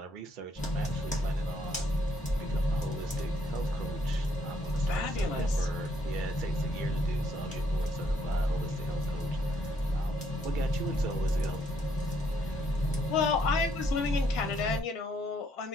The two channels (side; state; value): both; normal; correlation 0.71